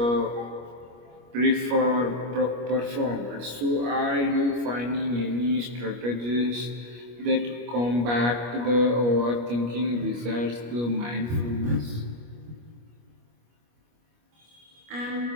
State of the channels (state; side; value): late; left; 25 ms